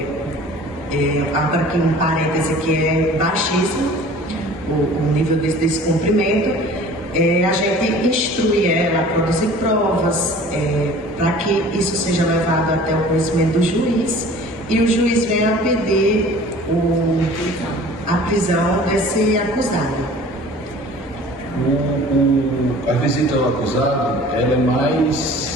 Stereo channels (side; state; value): both; normal; correlation 0.46